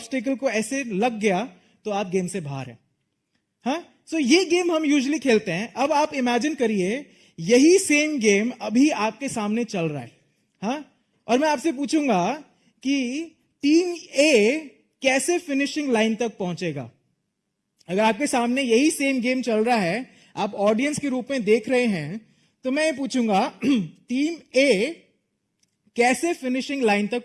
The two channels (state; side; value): identical; both; correlation 1.00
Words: को ऐसे लग गया तो आप गेम से बाहर हैं। हाँ, सो ये गेम हम यूजुअली खेलते हैं। अब आप इमेजिन करिए यही सेम गेम अभी आपके सामने चल रहा है। हाँ, और मैं आपसे पूछूंगा कि टीम ए कैसे फिनिशिंग लाइन तक पहुंचेगा। अगर आपके सामने यही सेम गेम चल रहा है, आप ऑडियंस के रूप में देख रहे हैं, तो मैं ये पूछूंगा टीम ए कैसे फिनिशिंग लाइन